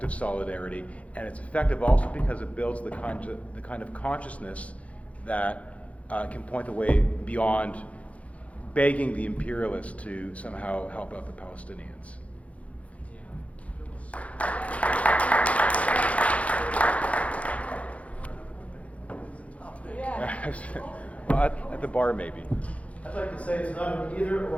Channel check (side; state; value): right; late; 0.065 ms